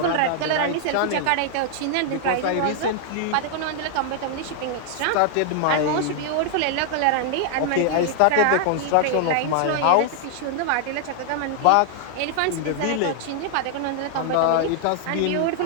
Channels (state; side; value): different; both; correlation 0.00